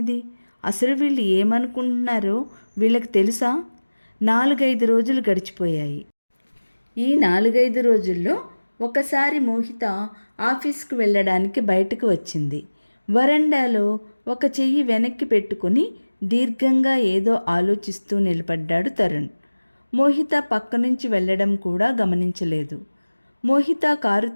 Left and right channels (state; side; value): inverted; both; correlation -1.00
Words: అసలు వీళ్ళు ఏమనుకుంటున్నారో వీళ్ళకి తెలుసా? 4-5 రోజులు గడిచిపోయాయి. ఈ 4-5 రోజుల్లో ఒకసారి మోహిత ఆఫీస్కు వెళ్ళడానికి బయటకు వచ్చింది. వరండాలో ఒక చెయ్యి వెనక్కి పెట్టుకుని దీర్ఘంగా ఏదో ఆలోచిస్తూ నిలబడ్డాడు తరుణ్. మోహిత పక్క నుంచి వెళ్ళడం కూడా గమనించలేదు. మోహిత కారు